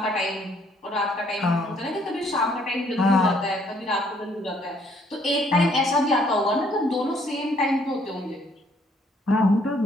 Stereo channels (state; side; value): normal; both; correlation 0.65